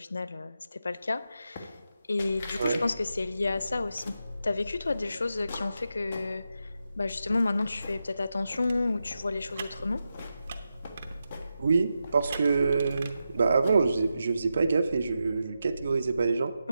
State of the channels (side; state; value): both; inverted; correlation -0.88